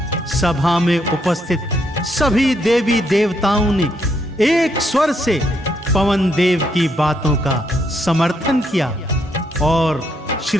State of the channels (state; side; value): normal; both; correlation 0.75